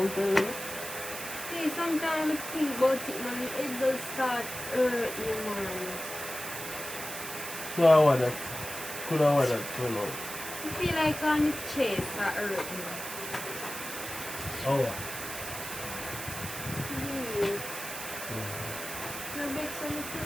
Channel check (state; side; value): noise; right; hiss, 8 dB below the sound